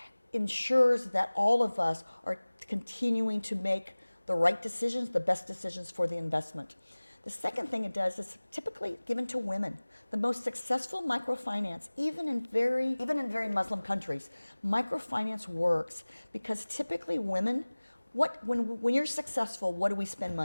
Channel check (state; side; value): inverted; both; correlation -1.00